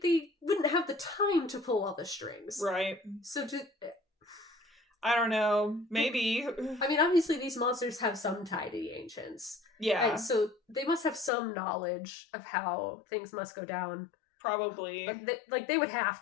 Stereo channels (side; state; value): right; drops out; at 11.3 s